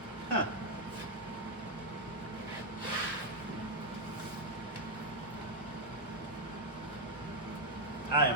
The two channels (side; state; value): both; normal; correlation -0.02